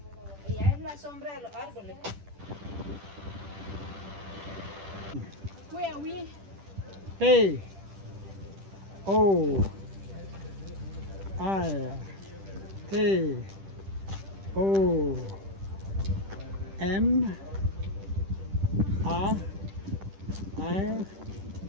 allá es la sombra de los árboles. Where are we? P O R T O M A R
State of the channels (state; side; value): late; left; 10 ms